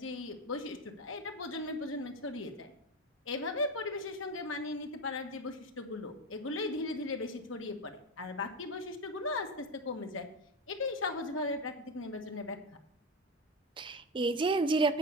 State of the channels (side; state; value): both; normal; correlation 0.18